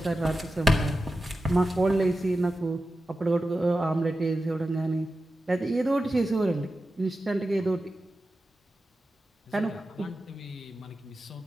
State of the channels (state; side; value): normal; both; correlation 0.92